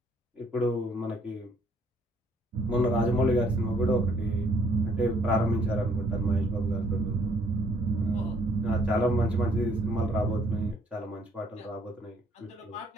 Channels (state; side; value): normal; both; correlation 0.64